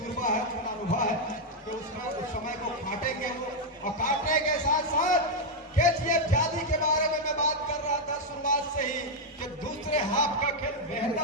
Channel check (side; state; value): both; normal; correlation 0.00